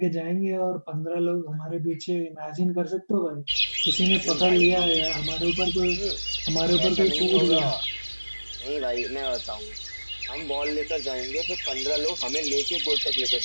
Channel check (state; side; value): inverted; both; correlation -1.00